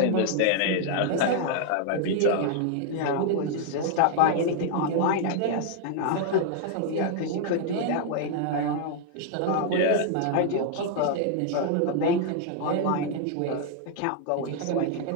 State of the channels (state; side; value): different; both; correlation 0.00